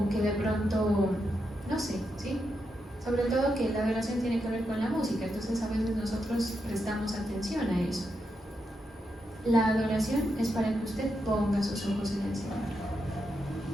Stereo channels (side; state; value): both; normal; correlation 0.84